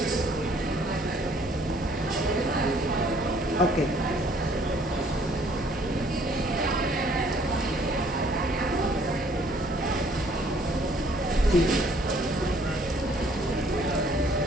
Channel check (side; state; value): both; normal; correlation 0.61